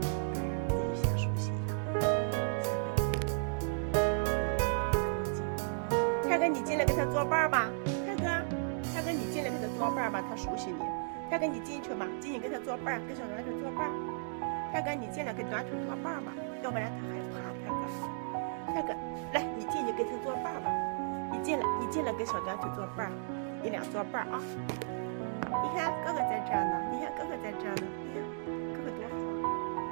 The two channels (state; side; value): silent; left; digital silence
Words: 自己先熟悉一下。泰哥，你进来给他做伴儿吧。泰哥，你进来给他做伴儿吧，他熟悉你。泰哥，你进去吧，进去给他做伴儿，跟小短腿做伴儿。泰哥，你进来给短腿做伴儿吧，要不然他害怕。泰哥，来，你进去跟他做伴儿吧。你进来跟小短腿做伴儿，你俩做伴儿啊。你看哥哥在这儿呢，你看哥哥在这儿呢，你看哥哥多好，